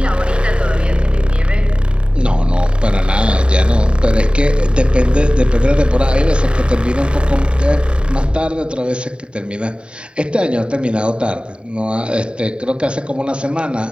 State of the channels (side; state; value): left; late; 0.053 ms